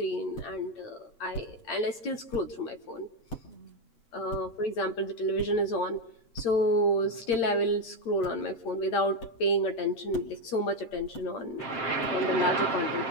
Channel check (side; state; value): right; late; 8.8 ms